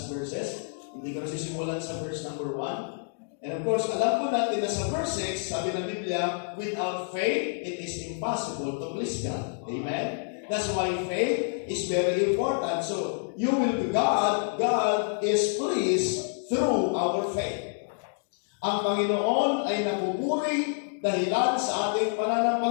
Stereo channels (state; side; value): silent; right; digital silence